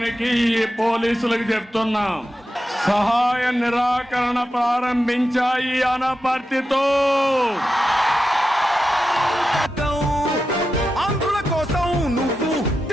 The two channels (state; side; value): normal; both; correlation 0.90